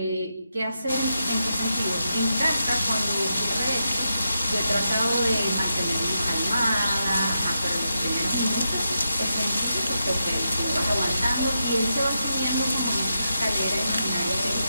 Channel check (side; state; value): both; inverted; correlation -0.86